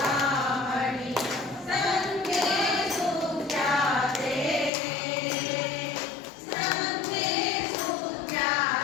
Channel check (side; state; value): right; drops out; at 4.7 s